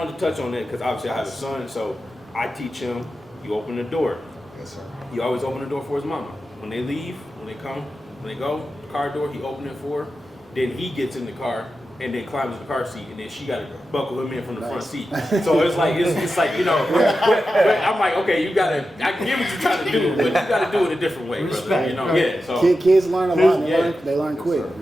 to touch on that because obviously I have a son, so I teach him, you open the door. Yes, sir. You always open the door for his mama. When they leave, when they go, the car door, he open it for her. Then he gets in the car and then climbs in the car seat, and then she got to buckle him in from the front seat. So it's like, but I'm like, okay, I can get what you're trying to do, but you got to do it a different way, brother. Yeah. So Kids learn a lot. They learn quick.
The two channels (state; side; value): normal; both; correlation 0.91